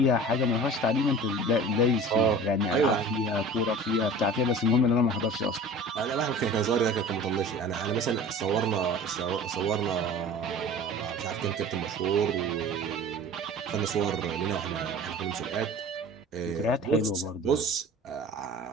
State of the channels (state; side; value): normal; both; correlation 0.40